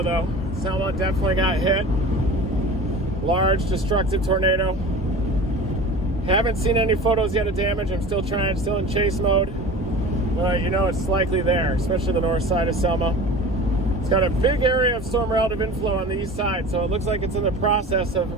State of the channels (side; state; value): both; normal; correlation 0.37